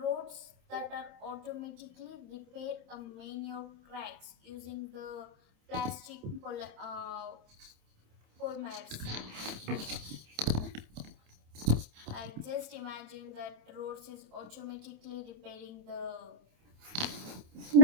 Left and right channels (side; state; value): left; late; 27 ms